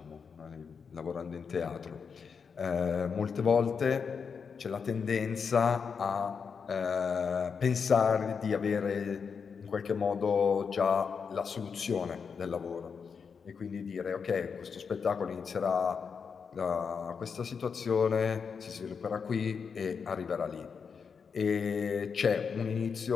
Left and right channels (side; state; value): right; quieter; 6.0 dB